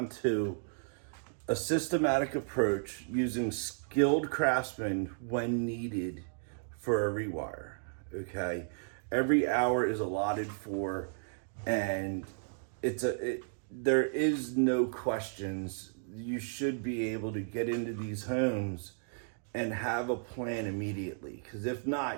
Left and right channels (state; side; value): silent; left; digital silence